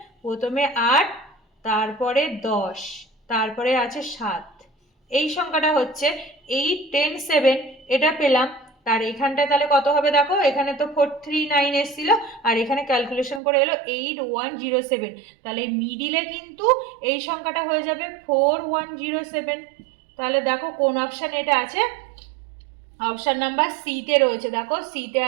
প্রথমে 8, তারপরে 10, তারপরে আছে 7, এই সংখ্যাটা হচ্ছে 8 10 7, এটা পেলাম। তার এখানটায় তাহলে কত হবে দেখো, এখানে তো 439 এসেছিল আর এখানে ক্যালকুলেশন করে এলো 8107, তাহলে মিডিলে কিন্তু এই সংখ্যাটা হয়ে যাবে 4107। তাহলে দেখো কোন অপশান এটা আছে, অপশান নাম্বার সিতে রয়েছে। দেখো সিতে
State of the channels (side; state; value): left; drops out; at 13.4 s